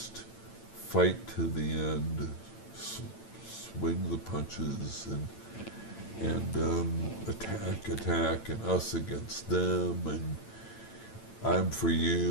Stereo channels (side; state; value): right; late; 8.9 ms